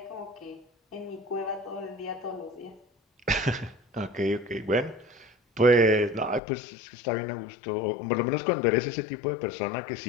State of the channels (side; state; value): right; drops out; at 6.4 s